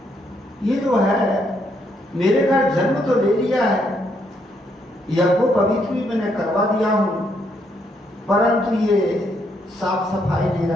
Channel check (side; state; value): both; normal; correlation 0.74